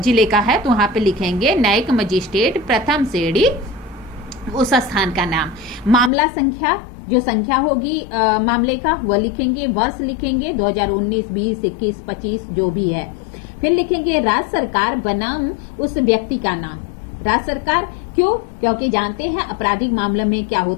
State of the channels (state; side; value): drops out; right; at 6.1 s